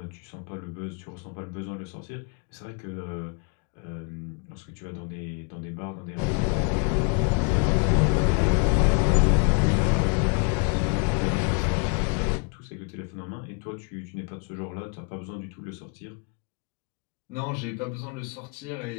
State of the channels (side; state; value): right; quieter; 34.3 dB